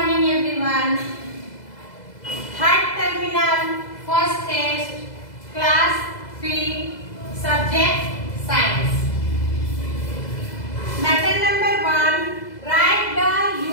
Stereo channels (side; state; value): right; late; 2.0 ms